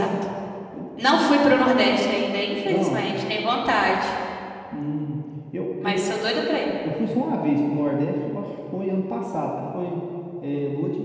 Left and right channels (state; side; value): identical; both; correlation 1.00